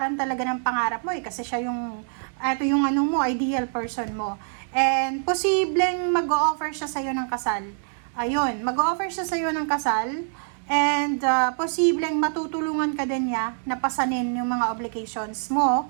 talaga ng pangarap mo eh, kasi siya yung, ito yung ideal person mo. And posibleng mag-o-offer siya sa'yo ng kasal. Ayun, mag-o-offer siya sa'yo ng kasal, and posibleng matutulungan ka din niya na pasanin yung mga obligations mo,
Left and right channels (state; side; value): silent; left; 62 dB below the other